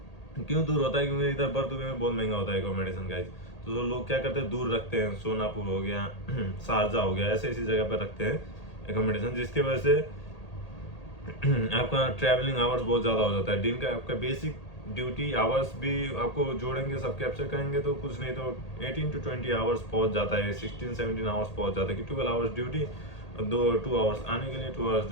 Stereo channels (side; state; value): right; late; 1.8 ms